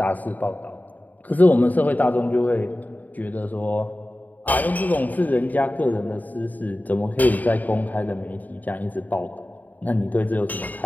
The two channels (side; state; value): right; late; 0.082 ms